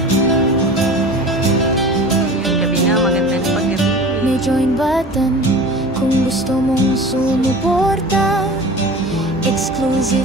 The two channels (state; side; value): normal; both; correlation 0.38